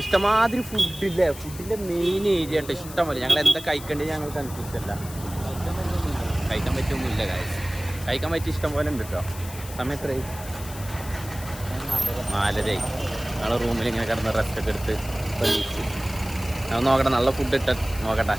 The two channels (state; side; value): noise; left; hiss, 14 dB below the sound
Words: ഫുഡില്ലേ. ഫുഡിൻ്റെ മെയിൻ ഏരിയ ഉണ്ട്. ഇഷ്ടമല്ല. ഞങ്ങൾ എന്താ കഴിക്കേണ്ടത് ഞങ്ങൾ കൺഫ്യൂസല്ല. കഴിക്കാൻ പറ്റൊന്നുമില്ല കാര്യം. കഴിക്കാൻ പറ്റിയ ഇഷ്ടം പോലെ ഉണ്ട് കേട്ടോ. സമയം എത്രയായി? 4:30. ഞങ്ങൾ റൂമിൽ ഇങ്ങനെ കിടന്ന് റെസ്റ്റൊക്കെ എടുത്ത് കഴിച്ചു. ഞാൻ നോക്കട്ടെ നല്ല ഫുഡ് ഇട്ട് നോക്കട്ടെ.